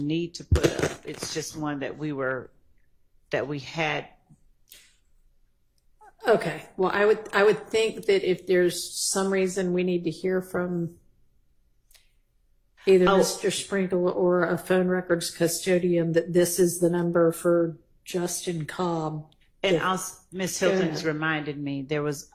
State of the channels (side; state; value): both; identical; correlation 1.00